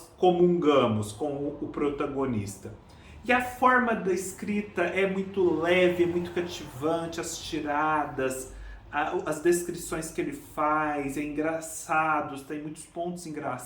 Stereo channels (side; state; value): both; identical; correlation 1.00